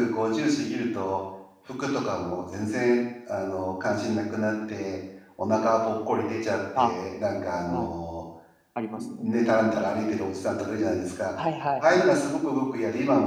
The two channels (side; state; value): both; identical; correlation 1.00